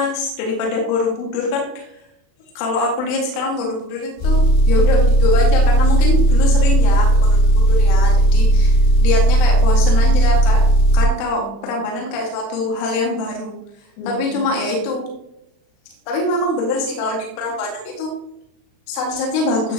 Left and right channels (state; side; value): late; right; 36 ms